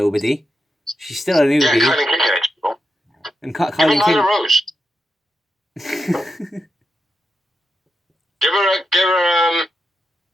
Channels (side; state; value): both; normal; correlation 0.86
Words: she's still a newbie. Yeah, Kylan King. And Kylan King. Nyla Rose. give her